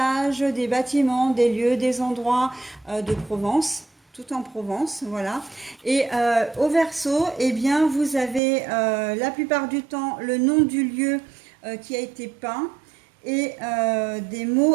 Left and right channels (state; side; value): drops out; left; at 8.4 s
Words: des bâtiments, des lieux, des endroits de Provence, tout en Provence, voilà. Et au verso, eh bien, vous avez la plupart du temps le nom du lieu qui a été peint et des